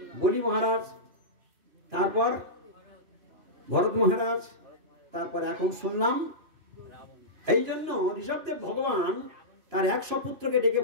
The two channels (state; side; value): late; left; 2.9 ms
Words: বলি মহারাজ, তারপর ভরত মহারাজ, তারপর এখন শুনলাম। এই জন্য ঋষভদেব ভগবান তার 100 পুত্রকে ডেকে